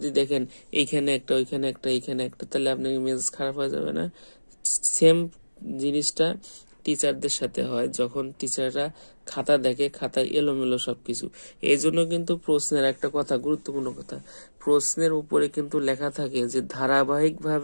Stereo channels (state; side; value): inverted; both; correlation -1.00